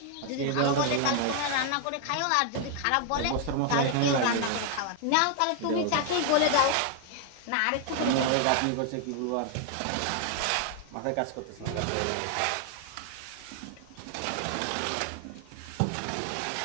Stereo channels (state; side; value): different; both; correlation 0.00